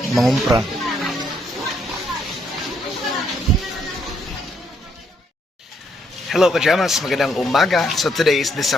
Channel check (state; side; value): normal; both; correlation 0.73